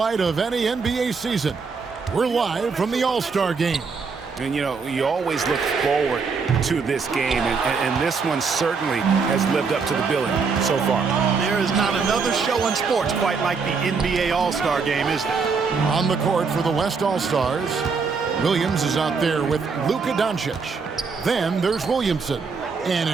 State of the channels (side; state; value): left; quieter; 5.1 dB